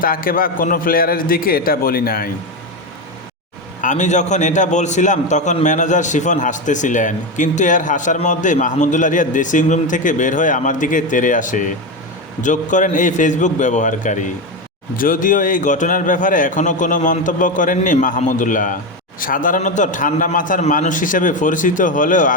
তাকে বা কোনো প্লেয়ারের দিকে এটা বলি নাই। আমি যখন এটা বলছিলাম তখন ম্যানেজার শিফন হাসতেছিলেন, কিন্তু এর হাসার মধ্যেই মাহমুদুল্লাহ রিয়াদ ড্রেসিং রুম থেকে বের হয়ে আমার দিকে তেড়ে আসে, যোগ করেন এই ফেসবুক ব্যবহারকারী। যদিও এই ঘটনার ব্যাপারে এখনও কোনো মন্তব্য করেননি মাহমুদুল্লাহ। সাধারণত ঠান্ডা মাথার মানুষ হিসেবে পরিচিত হলেও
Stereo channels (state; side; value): normal; both; correlation 0.13